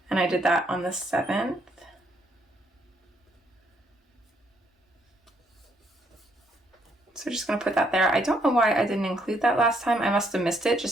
and I did that on the 7th. So just going to put that there. I don't know why I didn't include that last time. I must have missed it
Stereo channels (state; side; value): normal; both; correlation 0.71